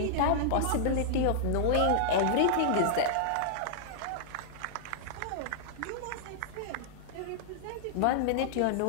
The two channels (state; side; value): different; both; correlation -0.01